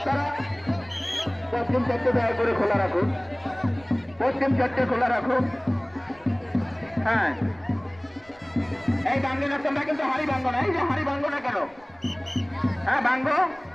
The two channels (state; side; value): noise; right; rumble, 28 dB below the sound